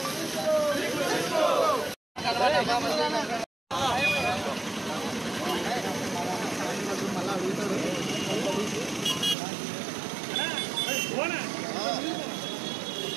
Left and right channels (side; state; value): left; drops out; at 9.3 s